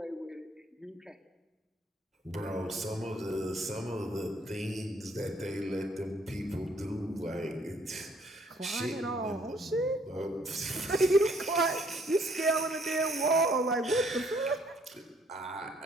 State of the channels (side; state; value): both; normal; correlation 0.65